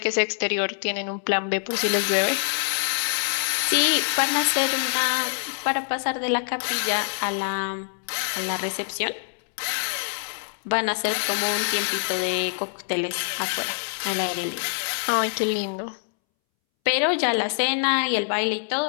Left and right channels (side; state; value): right; silent; 62 dB below the other